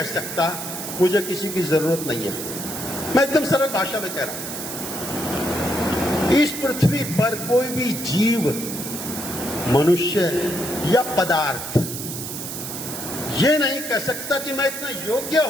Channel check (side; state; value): right; noise; hiss, 7 dB below the sound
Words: सकता मुझे किसी की जरूरत नहीं है। मैं एकदम सरल भाषा में कह रहा हूं, इस पृथ्वी पर कोई भी जीव, मनुष्य या पदार्थ ये नहीं कह सकता कि मैं इतना योग्य